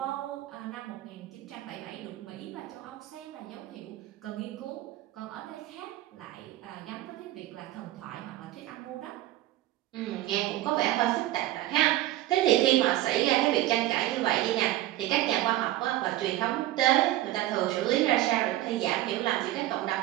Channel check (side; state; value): left; quieter; 15.4 dB